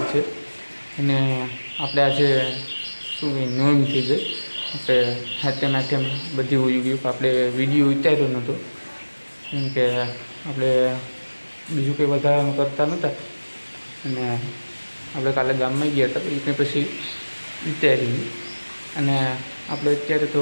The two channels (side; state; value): both; inverted; correlation -1.00